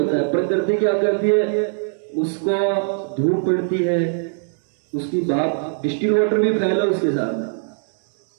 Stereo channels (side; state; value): left; silent; digital silence